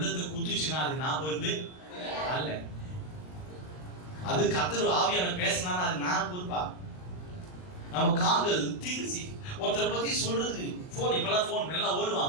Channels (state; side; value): late; right; 39 ms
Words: குத்துச்சுன்னா அதுக்கு நான் பொறுப்பு அல்ல. அது கர்த்தர் ஆவியான பேசினா அதுக்கு நான் பொறுப்பா? நம்ம கால்கள் தீங்கு ஒருத்தரை பத்தி சொல்றதுக்கு போன், இப்பெல்லாம் போன் எல்லாம்